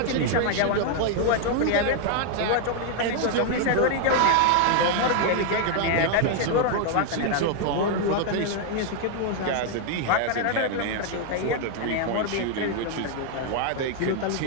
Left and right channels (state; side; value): different; both; correlation 0.00